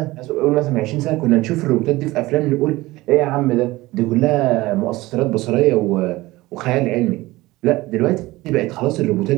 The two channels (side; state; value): left; quieter; 19.2 dB